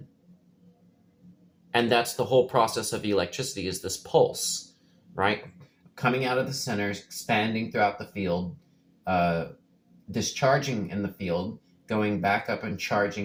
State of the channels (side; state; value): both; identical; correlation 1.00